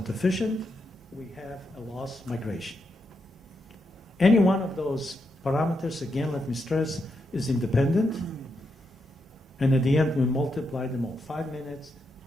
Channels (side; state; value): both; normal; correlation 0.83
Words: efficient, we have a lost migration. Any one of those parameters, again, let me stress, is independent. And at the end, we multiply them all. 5 minutes,